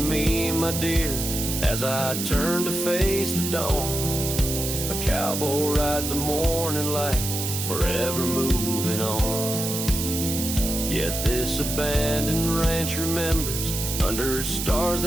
my dear, as I turn to face the dawn. A cowboy rides the morning light, forever moving on. Yet this abandoned ranch remembers, under stars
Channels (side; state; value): right; noise; hiss, 4 dB below the sound